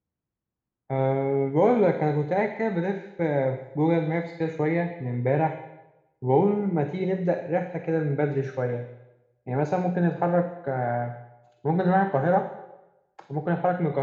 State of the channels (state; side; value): identical; both; correlation 1.00